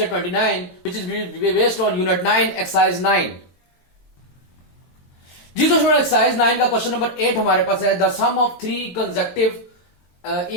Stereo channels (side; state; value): right; late; 22 ms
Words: 29, which is based on unit 9, exercise 9. जी दोस्तों, exercise 9 का question number 8 हमारे पास है. The sum of 3 consecutive